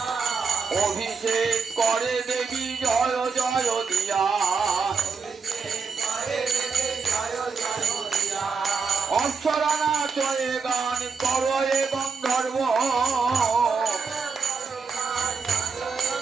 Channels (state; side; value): quieter; left; 5.2 dB